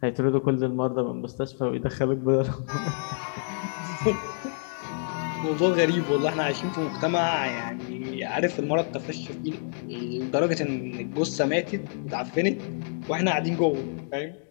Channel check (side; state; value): right; silent; 60 dB below the other